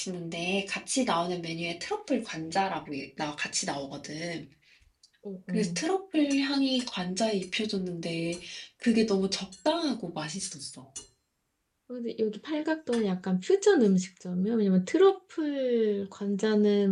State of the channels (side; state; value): both; identical; correlation 1.00